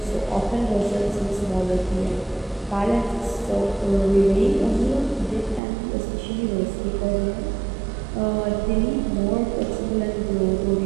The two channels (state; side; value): drops out; left; at 5.6 s